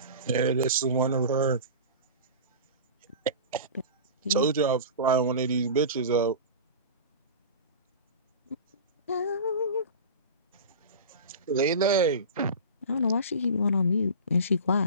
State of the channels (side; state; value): both; inverted; correlation -0.32